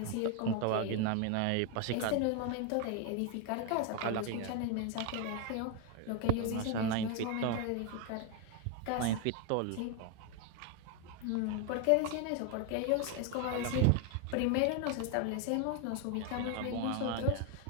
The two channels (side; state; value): both; different; correlation 0.01